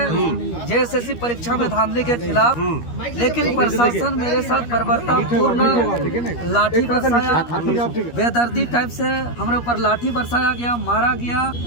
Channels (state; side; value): late; right; 13 ms